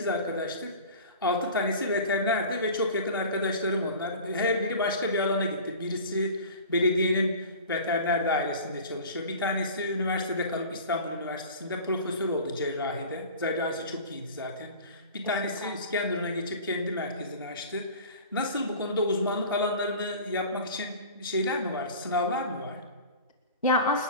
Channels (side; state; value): both; inverted; correlation -0.39